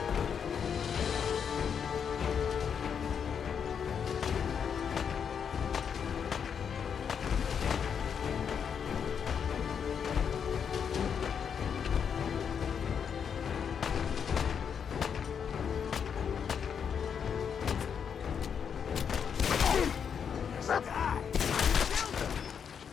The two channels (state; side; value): quieter; right; 7.3 dB